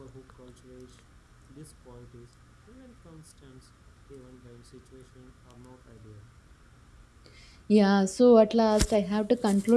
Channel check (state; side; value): identical; both; correlation 1.00